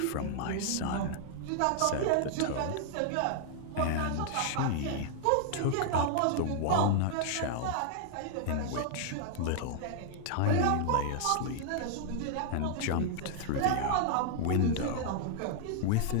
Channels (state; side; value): different; both; correlation 0.00